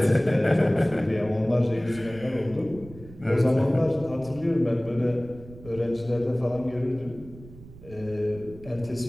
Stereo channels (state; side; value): noise; right; rumble, 18 dB below the sound